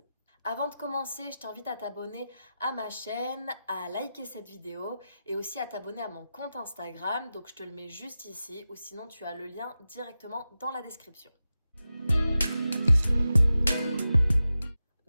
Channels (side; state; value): both; inverted; correlation -0.92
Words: Avant de commencer, je t'invite à t'abonner à ma chaîne, à liker cette vidéo et aussi à t'abonner à mon compte Instagram. Donc je te le mets juste ici ou sinon tu as le lien directement dans la description.